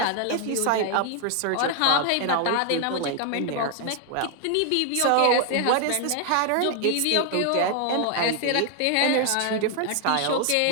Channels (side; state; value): both; different; correlation 0.00